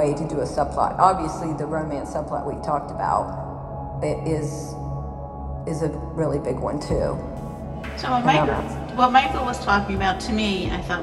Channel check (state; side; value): identical; both; correlation 1.00